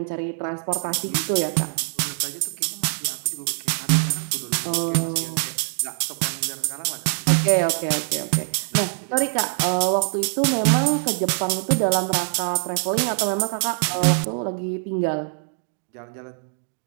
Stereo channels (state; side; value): silent; left; digital silence